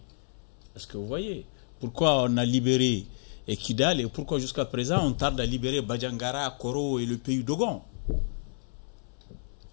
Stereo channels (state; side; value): silent; right; 58 dB below the other